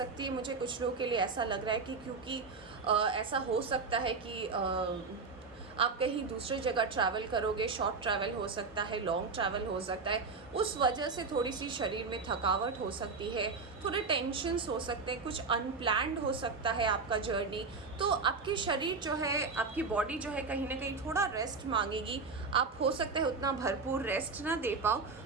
है। मुझे कुछ लोगों के लिए ऐसा लग रहा है कि क्योंकि ऐसा हो सकता है कि आप कहीं दूसरी जगह ट्रैवल करोगे, शॉर्ट ट्रैवल हो सकता है, लॉन्ग ट्रैवल हो सकता है, उस वजह से थोड़ी सी शरीर में थकावट हो सकती है, थोड़े टेंशन्स हो सकते हैं, कुछ अनप्लैन्ड हो सकता है आपका जर्नी। तो आपकी शरीर जो है, आपकी बॉडी जो है, कहीं ना कहीं थोड़ा रेस्ट मांगेगी। आप हो सकता है उतना भरपूर रेस्ट ना दे पाओ,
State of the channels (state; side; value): quieter; left; 4.5 dB